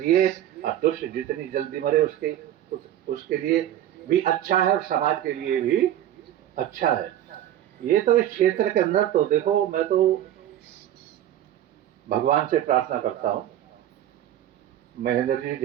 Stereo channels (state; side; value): quieter; left; 11.9 dB